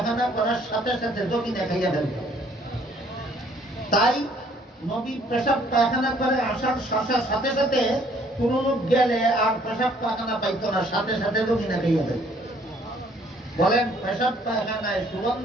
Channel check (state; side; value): normal; both; correlation 0.61